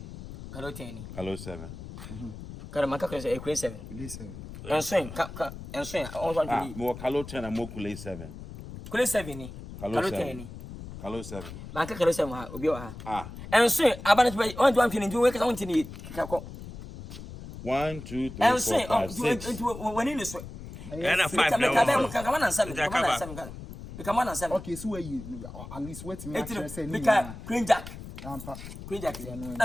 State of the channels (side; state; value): left; noise; rumble, 12 dB below the sound